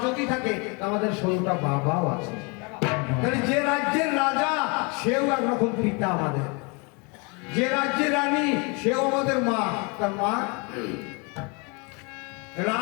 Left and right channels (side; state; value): right; quieter; 31.4 dB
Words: যদি থাকে, আমাদের 16টা বাবাও আছে। তাহলে যে রাজ্যের রাজা সেও একরকম পিতা আমাদের, যে রাজ্যের রানী সেও আমাদের মা। তার মা